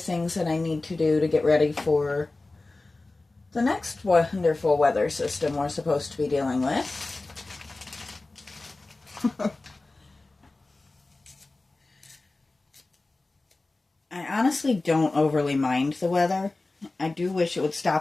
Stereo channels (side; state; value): right; quieter; 3.2 dB